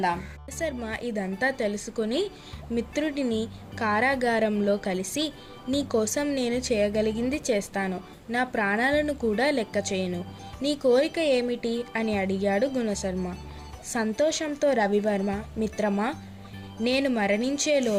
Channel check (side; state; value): both; identical; correlation 1.00